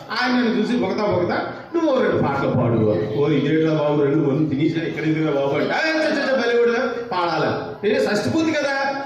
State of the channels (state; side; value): identical; both; correlation 1.00